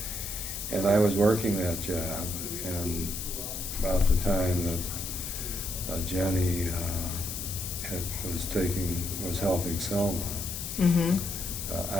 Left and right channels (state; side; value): noise; left; hiss, 6 dB below the sound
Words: And I was working that job, and about the time that Jennie was helping Selma, Mm-hmm.